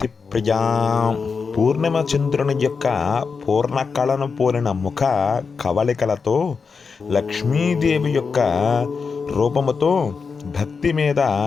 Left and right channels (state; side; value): quieter; right; 5.2 dB